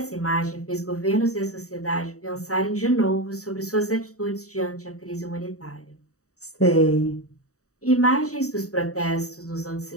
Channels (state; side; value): late; right; 0.65 ms